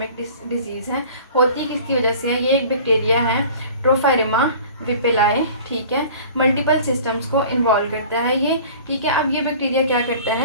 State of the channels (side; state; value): both; inverted; correlation -0.44